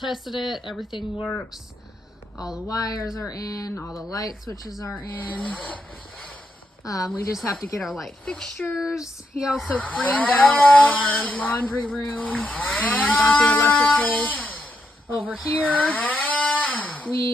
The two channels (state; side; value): normal; both; correlation 0.81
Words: it, everything works. All the wires are in, all the light switches are in. We just have to get our light fixtures. He also framed out our laundry room and got the electrical over here.